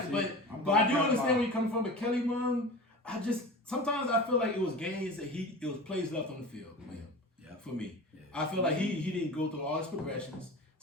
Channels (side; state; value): both; normal; correlation 0.33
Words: I'm but I do gonna understand talk where you're coming from. But Kelly Munn, sometimes I feel like it was games that it was plays left on the field for him. Yeah. For me, I feel like he didn't go through all his progressions.